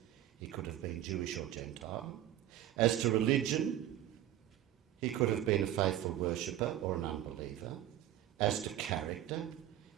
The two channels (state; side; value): quieter; left; 12.6 dB